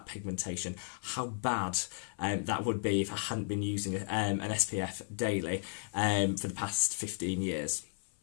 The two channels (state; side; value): silent; right; 55 dB below the other